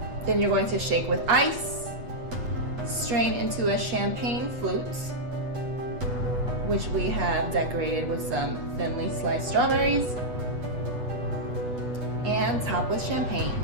Then you're going to shake with ice, strain into a champagne flute, which we have decorated with some thinly sliced strawberries, and top with champagne.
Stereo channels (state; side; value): late; left; 8.1 ms